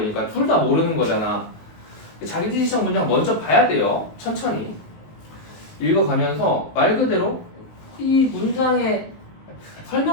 둘 다 모르는 거잖아. 자기지시적 문장 먼저 봐야 돼요. 천천히 읽어가면서 말 그대로 이 문장의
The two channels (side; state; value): right; late; 19 ms